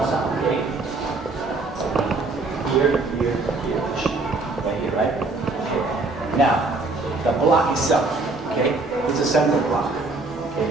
side. Okay. Here, here, here, right here, right? Okay. Now, the block itself, okay, is a center block. Okay,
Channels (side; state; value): left; quieter; 3.4 dB